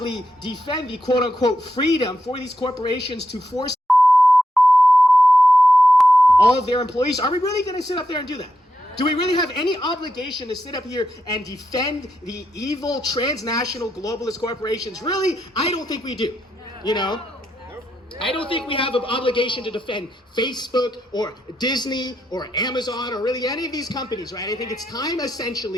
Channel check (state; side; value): normal; both; correlation 0.84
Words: defend the quote unquote freedom for these corporations to force all of their employees? Are we really going to sit up there and do that? Do we really have any obligation to sit up here and defend the evil transnational globalist corporations? Really? I don't think we do. I don't think we have an obligation to defend Facebook or Disney or Amazon or really any of these companies, right? I think it's time